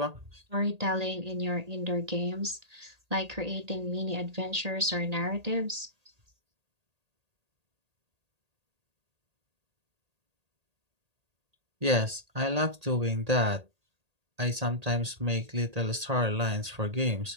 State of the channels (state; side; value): late; left; 1.8 ms